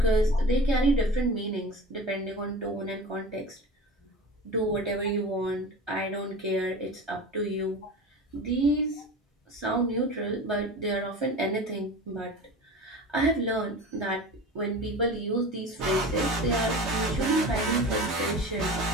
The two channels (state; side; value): normal; both; correlation 0.34